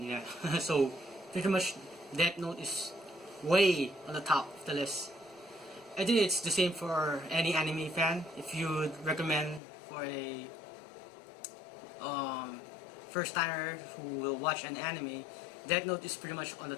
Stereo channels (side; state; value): right; drops out; at 9.6 s